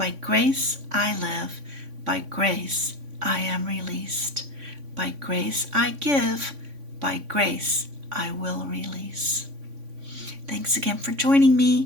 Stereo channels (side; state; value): left; late; 3.5 ms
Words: grace I live, by grace I am released. By grace I give, by grace I will release. Thanks again for joining